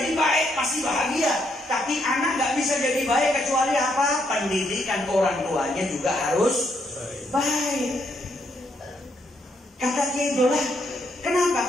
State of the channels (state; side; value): normal; both; correlation 0.75